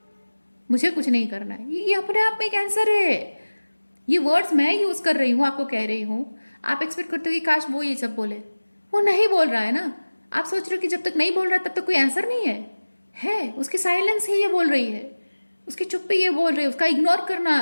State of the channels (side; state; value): both; inverted; correlation -1.00